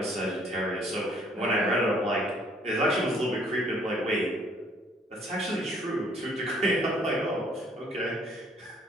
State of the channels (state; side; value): normal; both; correlation 0.61